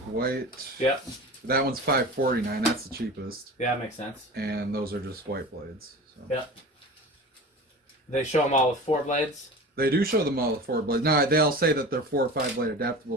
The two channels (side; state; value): both; normal; correlation 0.35